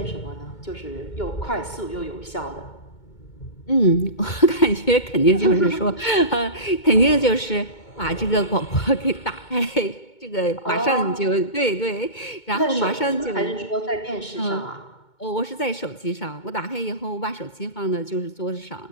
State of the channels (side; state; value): right; late; 2.2 ms